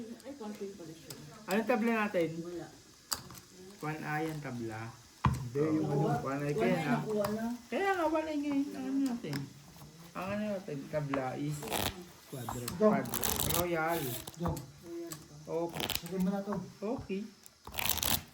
Anong tabla natin? 1A yung tabla. Hindi, yung ano. 1A kaya na. Kaya nga, 1A ngayon. Ano natin? Ang ano natin, tabla is Quadro. Royal. Go. Okay. Sagay mo na to. Okay.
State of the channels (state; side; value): identical; both; correlation 1.00